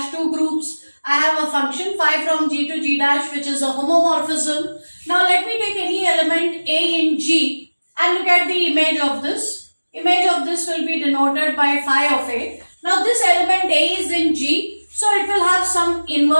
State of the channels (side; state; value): both; inverted; correlation -1.00